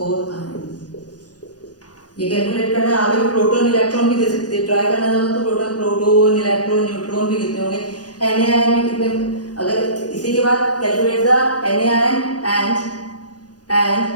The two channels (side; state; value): right; late; 0.68 ms